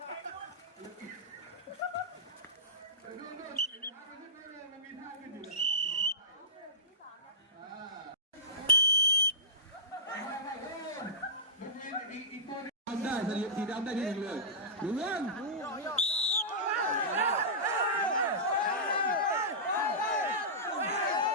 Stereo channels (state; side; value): normal; both; correlation -0.16